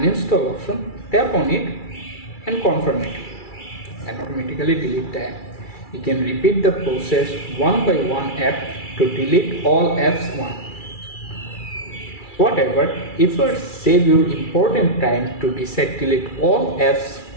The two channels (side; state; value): right; late; 2.3 ms